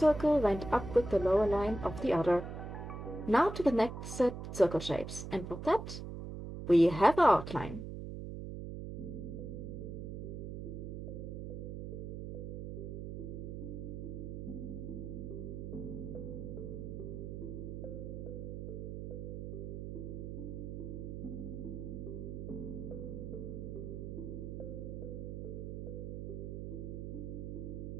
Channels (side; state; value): right; noise; hum, 6 dB below the sound